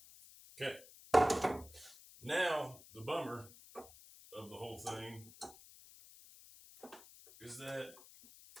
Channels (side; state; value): left; noise; hiss, 20 dB below the sound